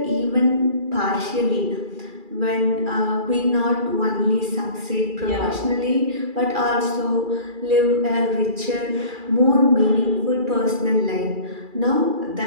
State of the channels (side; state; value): left; late; 2.4 ms